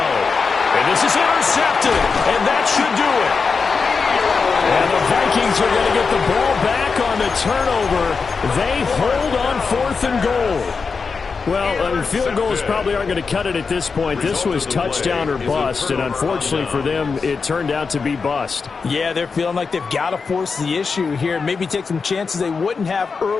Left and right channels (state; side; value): quieter; right; 5.0 dB